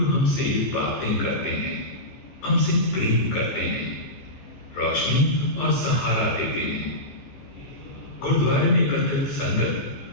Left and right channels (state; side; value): late; right; 15 ms